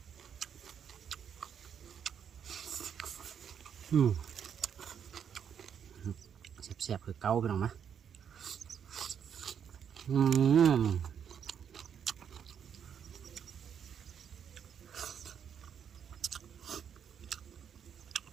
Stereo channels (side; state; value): left; quieter; 8.1 dB